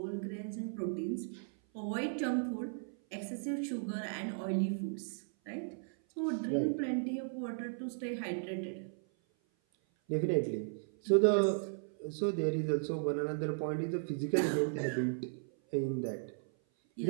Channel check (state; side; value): silent; left; 54 dB below the other